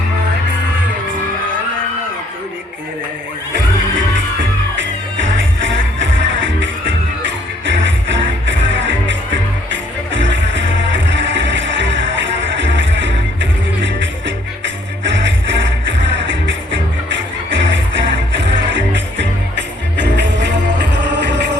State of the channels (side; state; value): both; normal; correlation 0.64